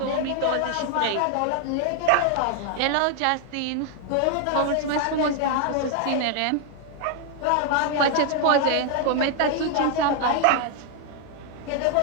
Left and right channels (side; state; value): both; different; correlation 0.00